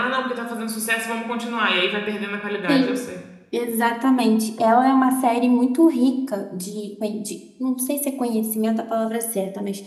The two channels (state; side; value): identical; both; correlation 1.00